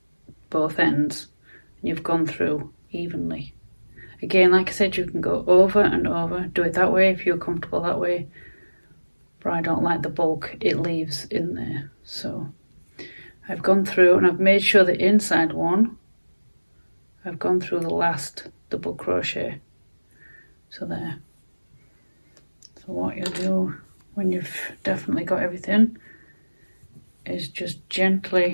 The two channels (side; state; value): both; inverted; correlation -1.00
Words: both ends. You've gone through evenly. Again, like I said, you can go over and over. Do it that way if you're comfortable that way. But I don't like the bulk it leaves in there. So I've gone through and I've made sure the inside one, I've gone through the last double crochet. So there. So what you'll do when you've definitely got everything is just